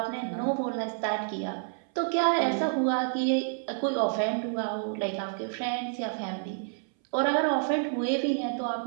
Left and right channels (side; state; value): left; silent; 59 dB below the other